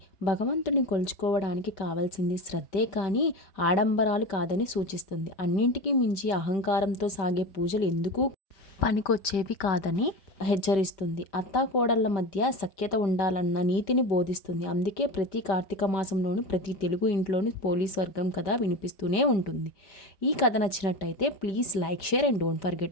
భగవంతుని కొలుచుకోవడానికి కావాల్సింది శ్రద్ధే కానీ ఆడంబరాలు కాదని సూచిస్తుంది. అన్నింటికీ మించి అహంకారంతో సాగే పూజలు ఎందుకు పనికొచ్చేవి కాదని హెచ్చరిస్తుంది. అత్తాకోడళ్ల మధ్య సఖ్యత ఉండాలన్న నీతిని బోధిస్తుంది. అందుకే ప్రతి కార్తీక మాసంలోనూ ప్రతి తెలుగు ఇంట్లోనూ పోలీస్ వర్గం కథ వినిపిస్తూనే ఉంటుంది. ఈ కథ నచ్చినట్టయితే please like, share and don't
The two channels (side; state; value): right; late; 5.1 ms